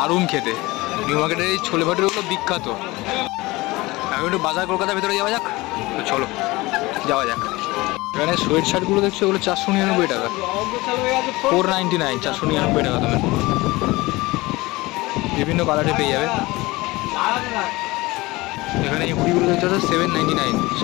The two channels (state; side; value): quieter; right; 21.1 dB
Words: খেতে। নিউ মার্কেটের এই ছোলে ভাটুরেগুলো বিখ্যাত। এখন একটু বাজার কলকাতার ভেতরে যাওয়া যাক, তো চলো যাওয়া যাক। এখানে সোয়েট শার্টগুলো দেখছো ওগুলো 499 টাকা, 499, 499 টাকা দামের। বিভিন্ন কালারে পেয়ে যাবে। এখানে এই হুডিগুলো দেখতে পাচ্ছ 799,